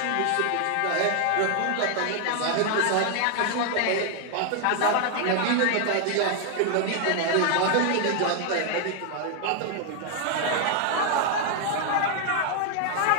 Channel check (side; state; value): both; different; correlation 0.00